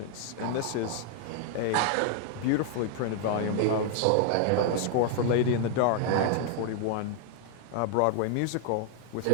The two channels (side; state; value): both; different; correlation 0.00